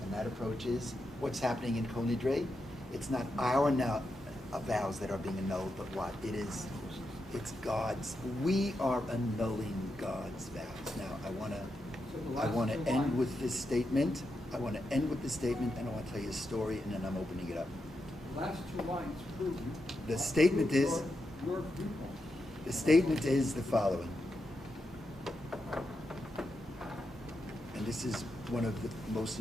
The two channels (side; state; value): both; normal; correlation 0.86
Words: and that approach is what's happening in Kol Nidre. It's not our vows that are being annulled, but what? It's God's. We are annulling God's vows. Now, I want to end with this statement. And I want to tell you a story, and then I'm opening it up. The last 2 lines prove The statement is, your viewpoint. the statement is the following. And this is one of the most